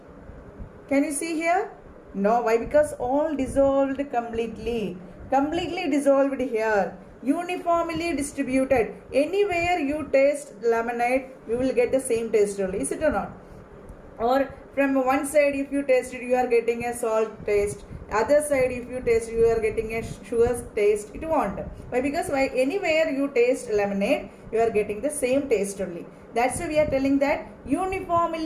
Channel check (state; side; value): identical; both; correlation 1.00